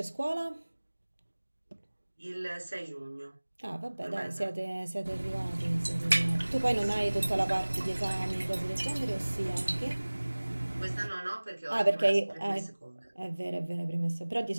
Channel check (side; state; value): both; inverted; correlation -1.00